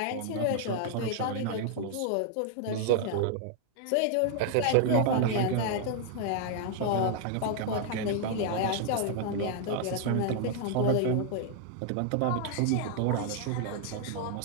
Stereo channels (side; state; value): both; different; correlation 0.00